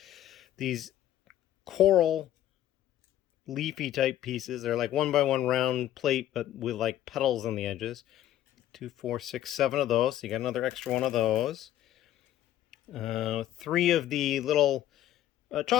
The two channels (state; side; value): quieter; right; 12.5 dB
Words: These coral leafy type pieces. They're like 1x1 round plate, but with like petals on the edges. 2, 4, 6, 7 of those. So you got another extra one of those. 3 of the little